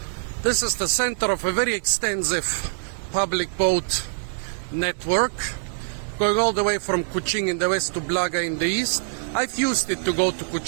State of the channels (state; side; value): silent; left; 62 dB below the other